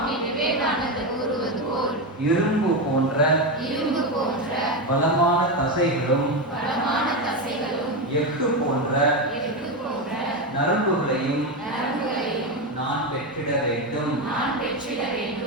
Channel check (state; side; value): normal; both; correlation 0.13